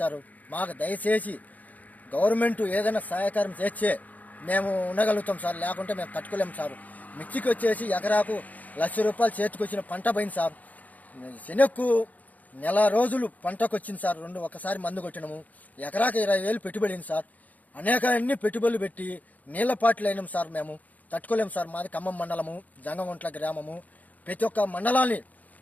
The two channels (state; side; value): late; right; 0.077 ms